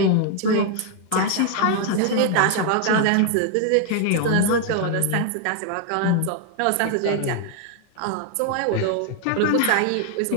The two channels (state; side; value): different; both; correlation 0.00